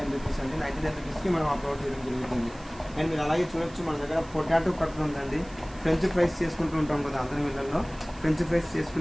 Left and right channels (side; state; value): right; noise; hiss, 23 dB below the sound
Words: రూపీస్ అండి. 99 రూపీస్కి మనం ఆ ప్రోడక్ట్ ఇవ్వడం జరుగుతుంది. అండ్ మీరు అలాగే చూడొచ్చు మన దగ్గర పొటాటో కట్టర్ ఉందండి. ఫ్రెంచ్ ఫ్రైస్ చేసుకుంటూ ఉంటాం కదా అందరి వీళ్ళల్లో, ఫ్రెంచ్ ఫ్రైస్